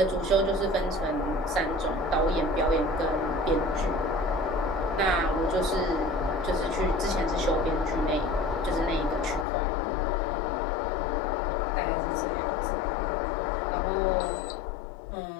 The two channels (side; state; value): right; drops out; at 9.5 s